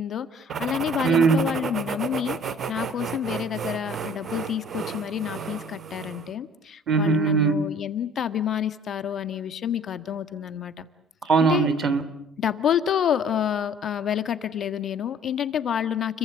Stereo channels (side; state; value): both; normal; correlation 0.53